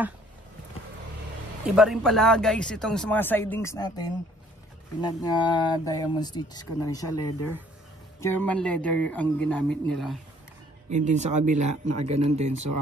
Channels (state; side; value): normal; both; correlation 0.59